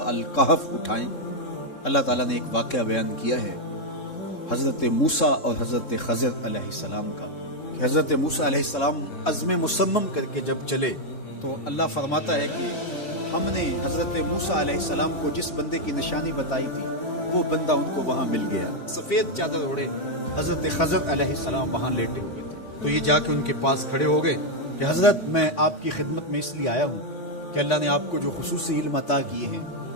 الکہف اٹھائیں۔ اللہ تعالیٰ نے ایک واقعہ بیان کیا ہے حضرت موسیٰ اور حضرت خضر علیہ السلام کا، کہ حضرت موسیٰ علیہ السلام عزم مصمم کر کے جب چلے تو اللہ فرماتا ہے کہ ہم نے حضرت موسیٰ علیہ السلام کو جس بندے کی نشانی بتائی تھی وہ بندہ ان کو وہاں مل گیا۔ سفید چادر اوڑے حضرت خضر علیہ السلام وہاں لیٹے ہوئے تھے، تو یہ جا کے ان کے پاس کھڑے ہو گئے کہ حضرت میں آپ کی خدمت میں اس لیے آیا ہوں کہ اللہ نے آپ کو جو خصوصی علم عطا کیے ہیں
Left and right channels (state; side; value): late; right; 3.7 ms